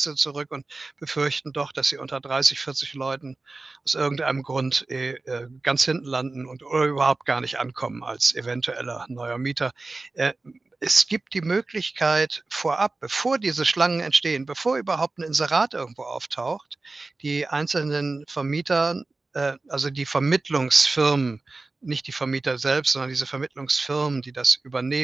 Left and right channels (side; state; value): left; quieter; 3.5 dB